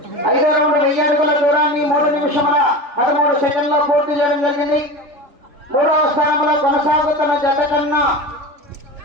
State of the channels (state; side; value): late; left; 3.4 ms